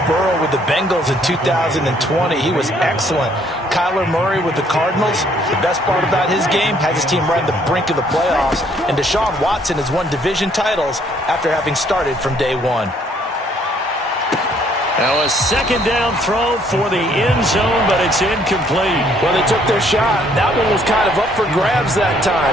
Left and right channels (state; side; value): normal; both; correlation 0.65